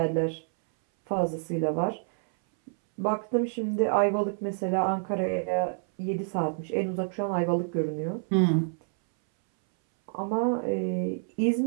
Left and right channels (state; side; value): silent; left; 59 dB below the other